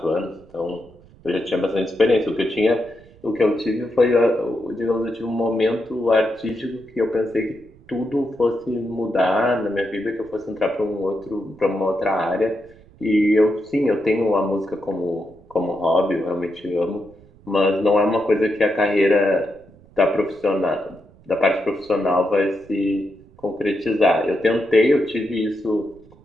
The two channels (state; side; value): noise; right; rumble, 26 dB below the sound